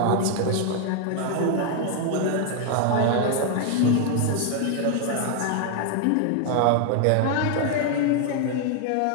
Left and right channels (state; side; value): different; both; correlation 0.00